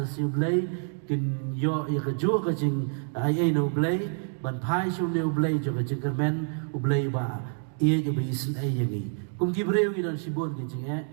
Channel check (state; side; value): silent; left; 60 dB below the other